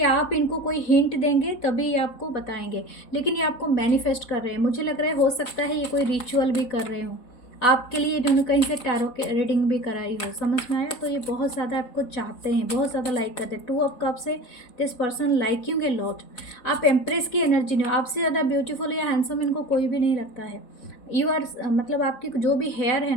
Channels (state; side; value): late; right; 4.0 ms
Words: आप इनको कोई हिंट देंगे तभी ये आपको बताएंगे, लेकिन ये आपको मैनिफेस्ट कर रहे हैं। मुझे लग रहा है हो सकता है ये कोई रिचुअल भी कर रहे हो आपके लिए, इन्होंने कहीं से टैरो के रीडिंग भी कराई हो। समझ में आया? तो ये बहुत ज़्यादा आपको चाहते हैं, बहुत ज़्यादा लाइक करते हैं। 2 ऑफ कप्स से this person liking a lot. आप एम्प्रेस की एनर्जी नहीं हो, आपसे ज़्यादा ब्यूटीफुल या हैंडसम इनको कोई भी नहीं लगता है। यू आर मतलब आपकी जो भी हेयर है